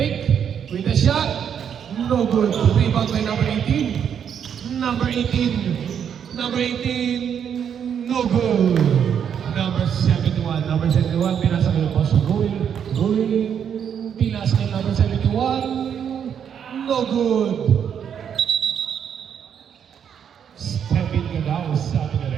with a shot. No good. Rebound by number 18. Number 18, no good. Number 71, pinasa kay Boss Rui. Pinasa kay number 71, no good. Step in ka daw, sabi ka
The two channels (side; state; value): left; quieter; 8.2 dB